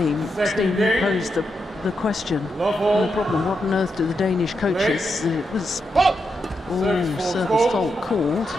Steve posed the question, the problem, what on earth do the Danish coaches, it was Ooh, service fault called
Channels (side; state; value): both; normal; correlation 0.84